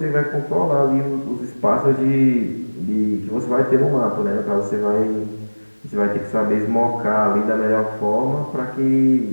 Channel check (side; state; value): both; inverted; correlation -1.00